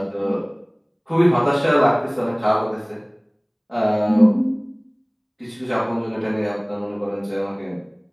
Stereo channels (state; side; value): identical; both; correlation 1.00